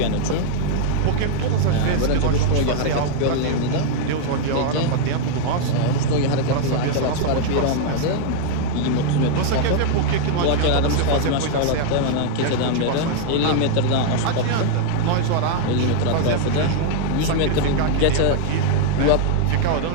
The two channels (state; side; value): different; both; correlation -0.01